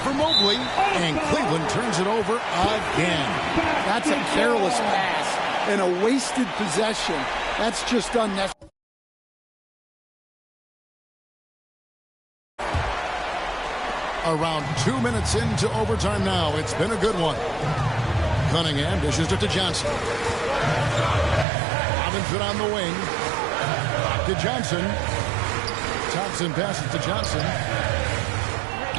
Mobley. And Cleveland turns it over again. That's a careless pass and a wasted possession. That's just unnecessary. Around 2 minutes into overtime now. It's been a good one. Cunningham dishes it to Johnson. Robinson on the wing. Back to Johnson. Thompson passes to Johnson.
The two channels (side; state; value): left; drops out; at 21.5 s